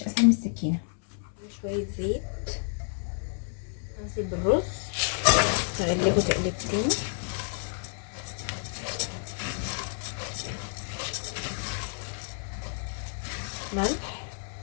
اسهل من السكينه. شويه زيت، انزل بالرز، اقلبه تقلبتين. ملح،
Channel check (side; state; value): right; silent; 58 dB below the other